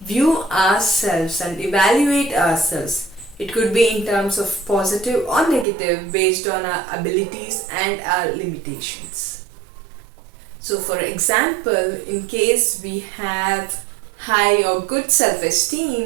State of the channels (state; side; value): drops out; left; at 5.7 s